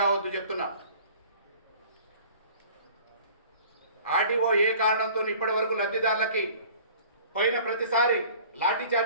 చెప్తున్నా. ఆర్డీఓ ఏ కారణంతో ఇప్పటి వరకు లబ్ధిదారులకి పోయిన ప్రతిసారి లాఠీ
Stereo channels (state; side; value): inverted; both; correlation -0.48